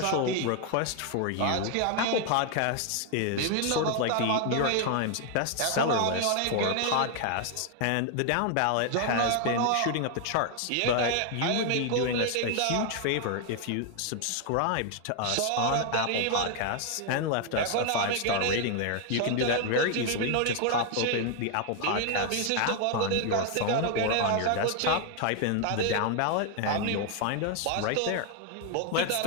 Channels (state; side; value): different; both; correlation 0.00